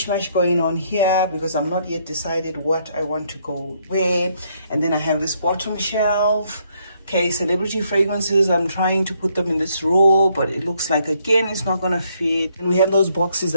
going on here because I'm not yet decided what I want to go where. And then I have this bottom shelf. Okay, celebrity fragrances, I'm trying to put them in this row, but it looks like again it's not gonna fit. And we have those boxes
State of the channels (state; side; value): inverted; both; correlation -0.71